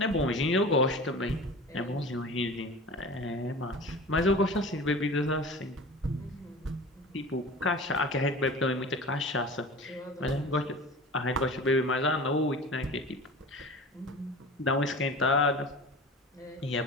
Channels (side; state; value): both; normal; correlation 0.36